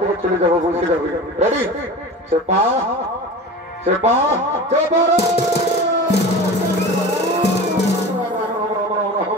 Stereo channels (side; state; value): both; normal; correlation 0.33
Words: চলে যাব বলতে যাবে রেডি चेपा